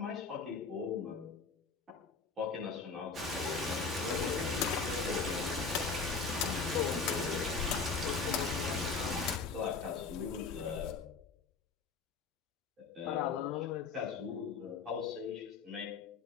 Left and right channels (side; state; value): right; quieter; 4.8 dB